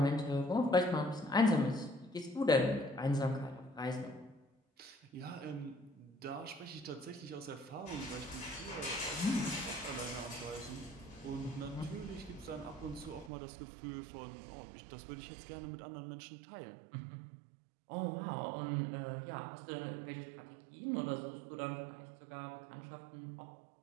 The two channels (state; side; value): drops out; left; at 13.3 s